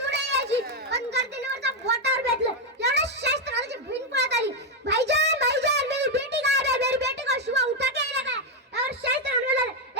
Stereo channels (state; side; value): normal; both; correlation 0.03